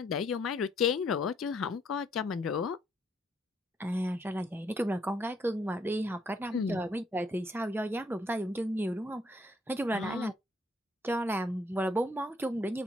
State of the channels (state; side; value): normal; both; correlation 0.69